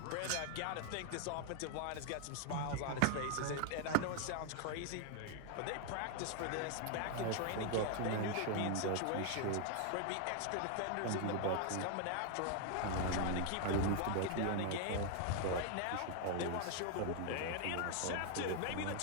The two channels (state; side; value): different; both; correlation 0.00